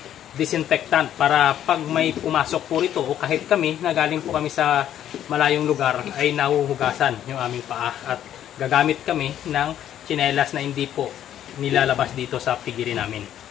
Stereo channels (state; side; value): quieter; right; 10.9 dB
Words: disinfectant para pag may pumasok po rito o kahit kami na galing po kami sa malayong lugar ay nahuhugasan yung aming paa at gagamit kami ng tsinelas na hindi po nilalabas dito sa pigiri namin.